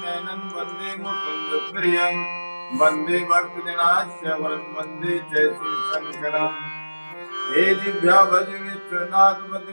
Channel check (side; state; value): both; inverted; correlation -1.00